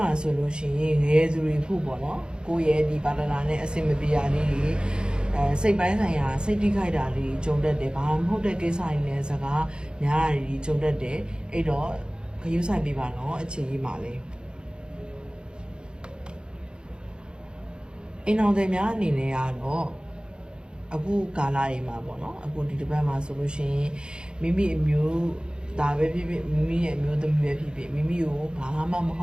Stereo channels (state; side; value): late; left; 0.050 ms